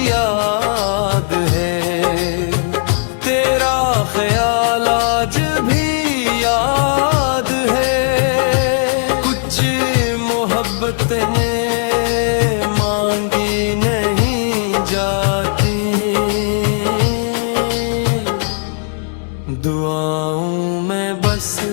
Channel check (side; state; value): right; silent; digital silence